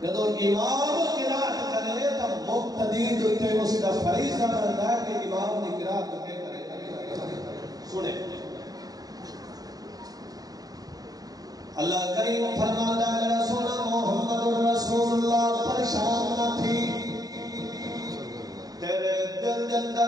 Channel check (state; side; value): late; left; 0.18 ms